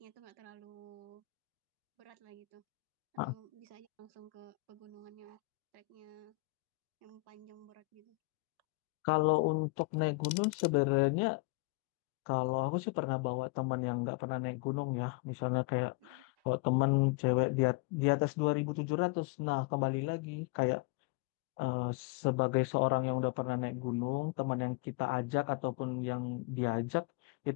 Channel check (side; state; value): right; quieter; 25.7 dB